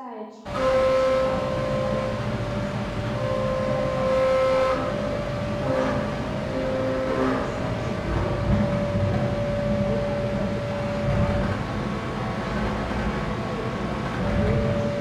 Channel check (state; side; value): identical; both; correlation 1.00